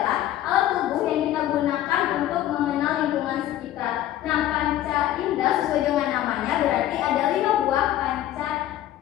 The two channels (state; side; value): quieter; right; 13.0 dB